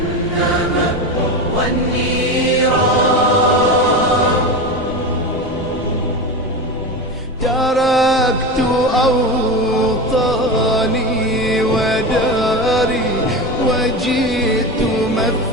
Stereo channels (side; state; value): left; noise; rumble, 18 dB below the sound